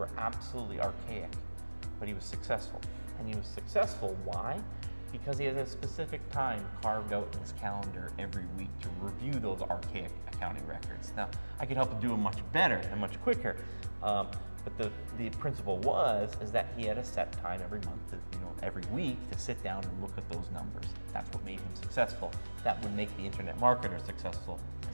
absolutely archaic, but he was successful. And he was successful, why? Because he has a specific time carved out in his calendar every week to review those archaic accounting records. Now, I could help him do it much better and much quicker, but the principle is that he had a set time every month, every week to sit down and look at those numbers. That's what made him successful. That would make the internet marketer successful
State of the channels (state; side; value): inverted; both; correlation -1.00